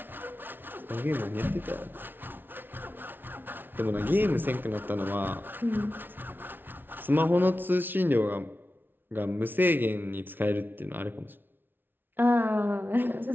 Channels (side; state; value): left; late; 0.098 ms